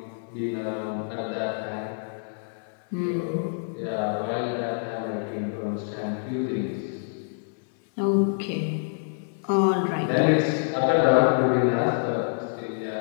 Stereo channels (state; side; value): silent; right; digital silence